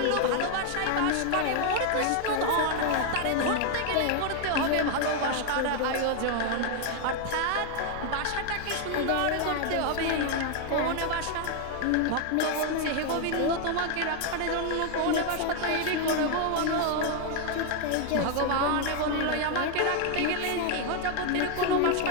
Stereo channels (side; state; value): both; different; correlation 0.00